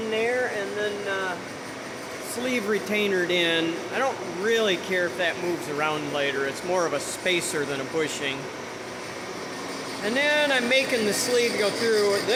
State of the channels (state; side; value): identical; both; correlation 1.00